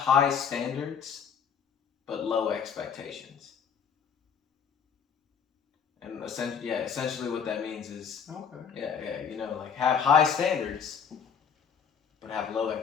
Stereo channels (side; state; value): right; quieter; 7.0 dB